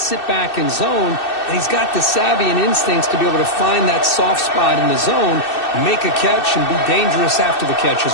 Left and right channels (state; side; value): late; right; 2.6 ms